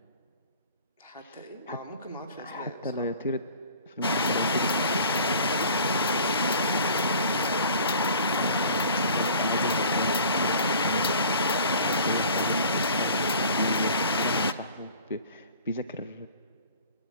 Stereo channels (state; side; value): inverted; both; correlation -0.47